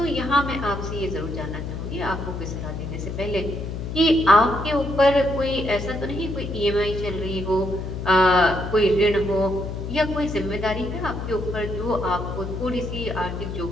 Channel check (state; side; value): noise; left; hum, 6 dB below the sound